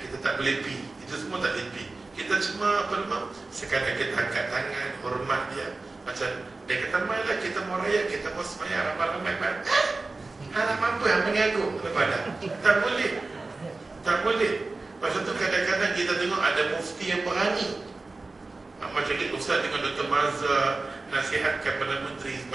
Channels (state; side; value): quieter; left; 3.4 dB